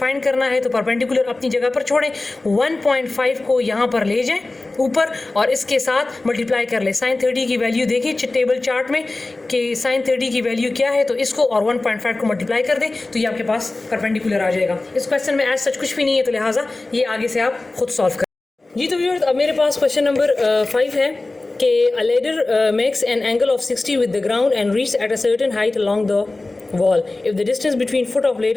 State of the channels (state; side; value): quieter; right; 3.1 dB